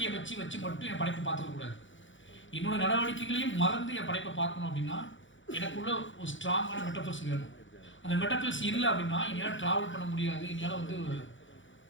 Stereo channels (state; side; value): late; right; 0.56 ms